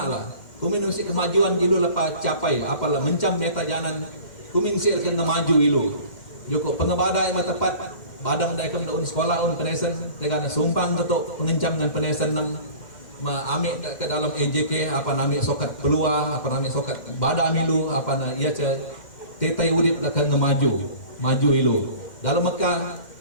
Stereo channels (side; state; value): right; late; 2.1 ms